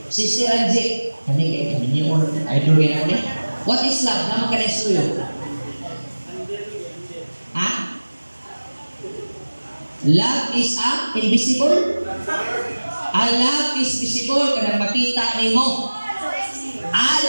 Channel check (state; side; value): inverted; both; correlation -1.00